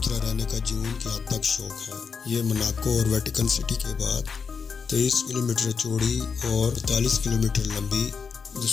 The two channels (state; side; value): quieter; right; 5.7 dB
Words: رہنے کا جنون کی حد تک شوق ہے۔ یہ مناکو اور ویٹیکن سٹی کے بعد 23 کلومیٹر چوڑی اور 45 کلومیٹر لمبی